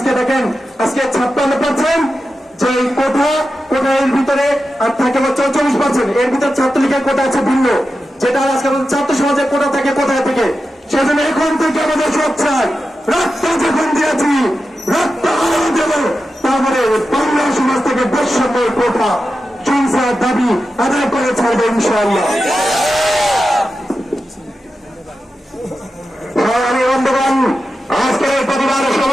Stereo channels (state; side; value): normal; both; correlation 0.91